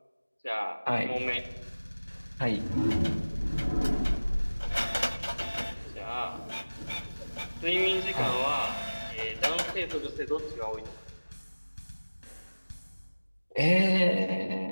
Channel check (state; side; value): inverted; both; correlation -1.00